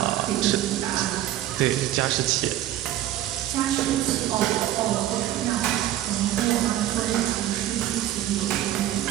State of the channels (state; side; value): quieter; left; 13.3 dB